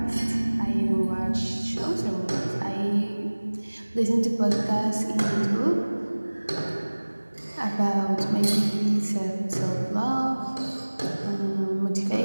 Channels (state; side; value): inverted; both; correlation -1.00